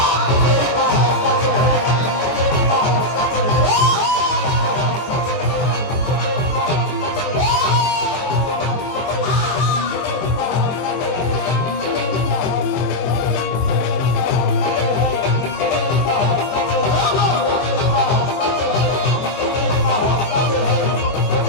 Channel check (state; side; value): late; right; 23 ms